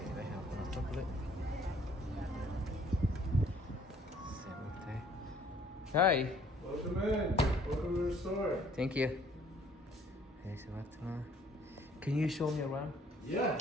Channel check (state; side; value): normal; both; correlation 0.60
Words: Hi. Welcome in. Welcome to the store. Thank you. Hey, Samarta. Can you show me around? Yeah.